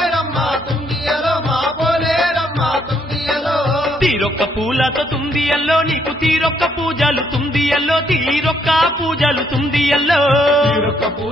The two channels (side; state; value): both; normal; correlation 0.71